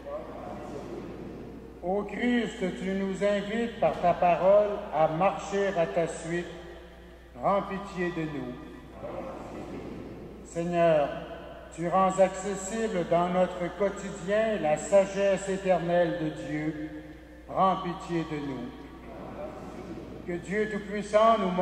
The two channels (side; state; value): both; identical; correlation 1.00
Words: Ô Christ, tu nous invites par ta parole à marcher à ta suite. Prends pitié de nous. Seigneur, tu rends accessible dans notre quotidien la sagesse éternelle de Dieu. Prends pitié de nous. Que Dieu Tout-Puissant nous